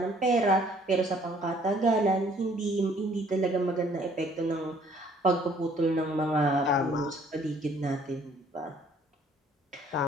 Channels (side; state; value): both; normal; correlation 0.60